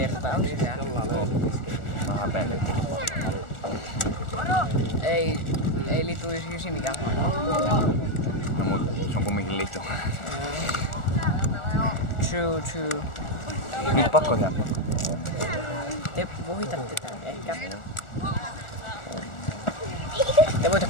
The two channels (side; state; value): right; late; 1.4 ms